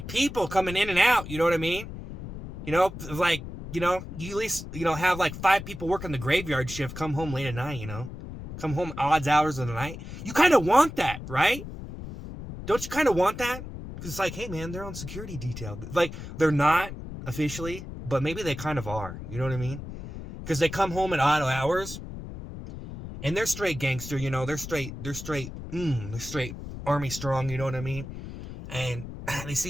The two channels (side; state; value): left; noise; rumble, 10 dB below the sound